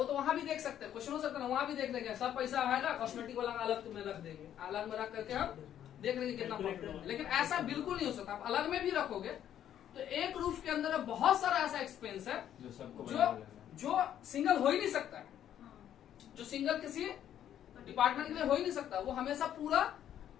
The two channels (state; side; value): quieter; right; 10.5 dB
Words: तो वहां भी देख सकते हैं, क्वेश्चन हो सकता है वहां भी देख लेंगे। सब पैसा आएगा, कॉस्मेटिक वाला अलग में रख देंगे, अलग में रख करके हम देख लेंगे कितना प्रॉफिट होगा। लेकिन ऐसा बिल्कुल नहीं हो सकता। आप अलग में भी रखोगे तो एक रूफ के अंदर बहुत सारा ऐसा एक्सपेंस है जो सिंगल हो ही नहीं सकता है, जो सिंगल किसी डिपार्टमेंट के लिए हो ही नहीं सकता। वो हमेशा पूरा